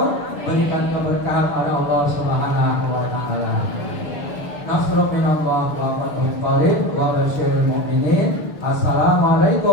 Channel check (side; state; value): right; late; 6.7 ms